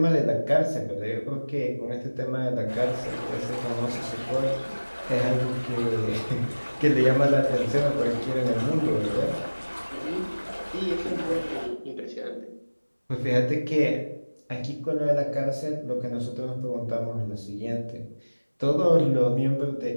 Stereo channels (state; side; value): inverted; both; correlation -1.00